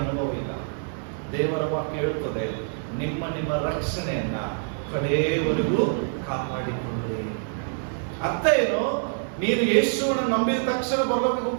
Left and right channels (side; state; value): left; silent; digital silence